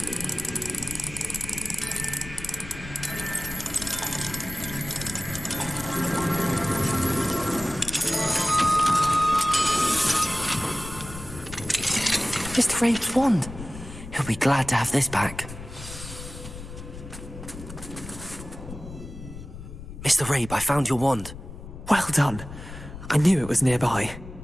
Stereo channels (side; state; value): left; noise; rumble, 12 dB below the sound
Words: Mr. Rabe's wand. He'll be glad to have this back. Mr. Rabe, I found your wand. Well done. I knew it was nearby.